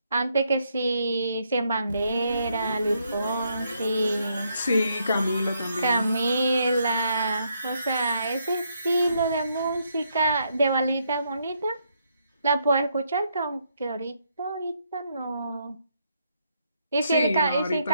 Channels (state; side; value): inverted; both; correlation -0.75